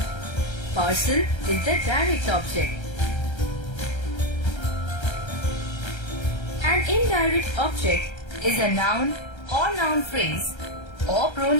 Parcel is the direct object. An indirect object is a noun or noun phrase or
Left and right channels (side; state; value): right; late; 1.3 ms